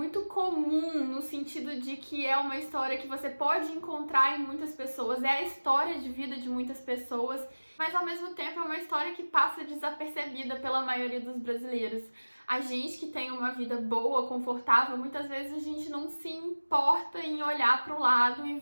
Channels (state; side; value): inverted; both; correlation -1.00